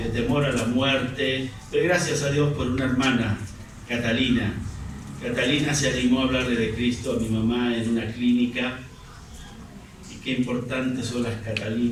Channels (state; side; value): identical; both; correlation 1.00